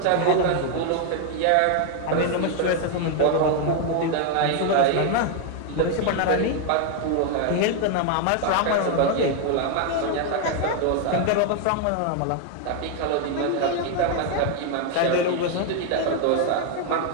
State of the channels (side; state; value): both; different; correlation 0.00